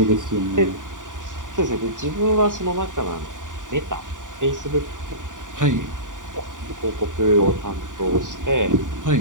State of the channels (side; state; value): left; late; 0.87 ms